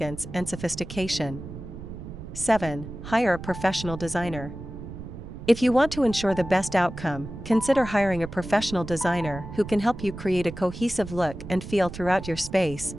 and sophistication. 7. Hire a professional designer. If you want to ensure the best outcome, consider hiring a professional designer who can help you create a cohesive look and feel throughout your space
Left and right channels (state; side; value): noise; right; rumble, 11 dB below the sound